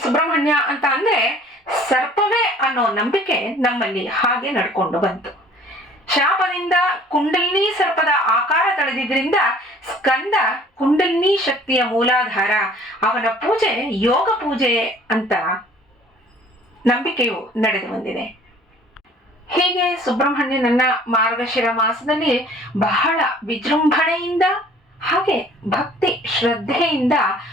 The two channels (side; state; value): both; normal; correlation 0.53